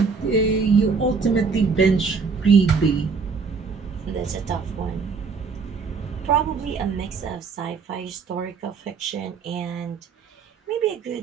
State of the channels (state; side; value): quieter; left; 5.1 dB